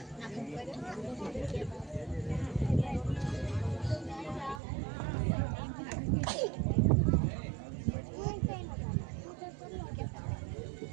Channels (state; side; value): drops out; left; at 4.6 s